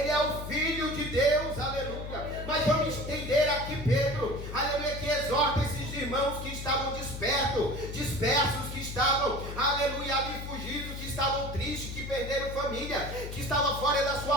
é o Filho de Deus. Aleluia. Mas vamos entender aqui Pedro. Aleluia, que exorta esses irmãos que estavam dispersos, que estavam, aleluia, ali fugidos, que estavam tristes, que perderam família, que estavam fora da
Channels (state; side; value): noise; left; hum, 8 dB below the sound